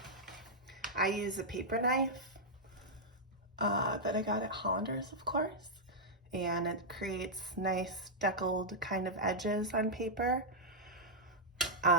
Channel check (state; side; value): normal; both; correlation -0.07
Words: I use a paper knife that I got at Hollander's, of course, and it creates nice deckled kind of edges on paper. But